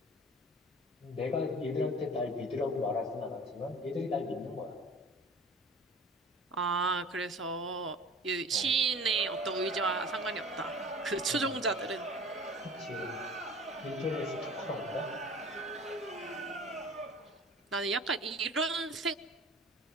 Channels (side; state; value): both; normal; correlation 0.43